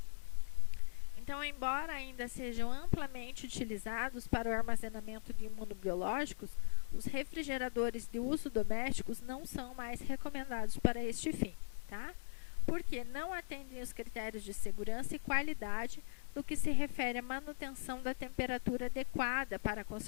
Então, embora ainda sejam amplamente utilizados para o armazenamento de imunobiológicos, os refrigeradores de uso domésticos não são mais recomendados para este fim, tá? Porque não atendem os critérios de segurança e qualidade no que se refere à manutenção da temperatura adequada para a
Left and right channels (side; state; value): right; silent; 51 dB below the other